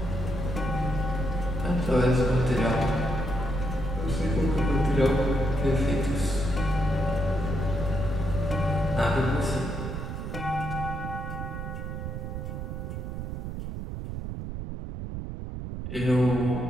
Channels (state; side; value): noise; right; rumble, 6 dB below the sound